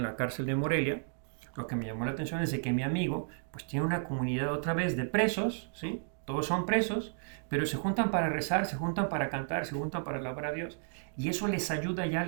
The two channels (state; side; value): silent; left; digital silence